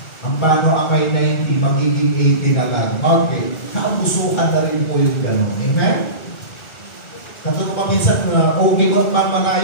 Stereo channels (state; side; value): late; right; 1.4 ms